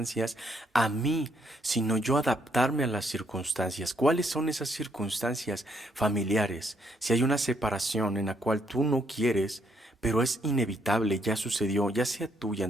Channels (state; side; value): normal; both; correlation 0.72